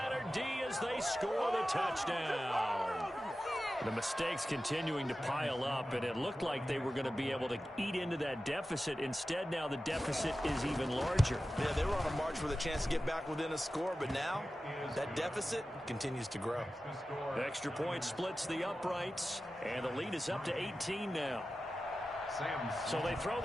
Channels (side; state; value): both; normal; correlation 0.94